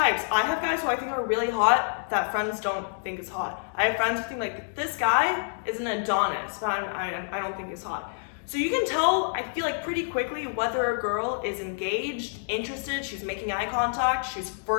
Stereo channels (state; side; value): silent; right; digital silence